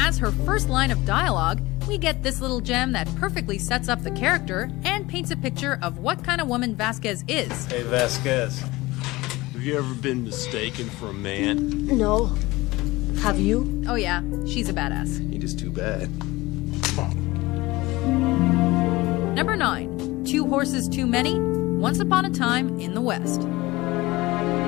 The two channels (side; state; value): right; quieter; 20.4 dB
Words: her first line of dialogue, we get this little gem that perfectly sets up the character and paints a picture of what kind of woman Vasquez is. Hey, Vasquez. Have you ever been mistaken for a man? No. Have you? Oh yeah, she's a badass. Ain't just too bad. Number 9. 2 Horses Too Many, Once Upon a Time in the West.